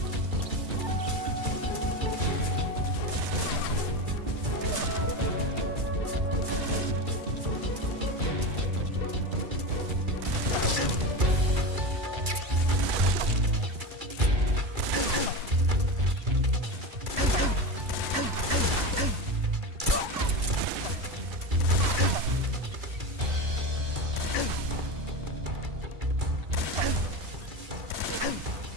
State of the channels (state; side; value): late; left; 2.3 ms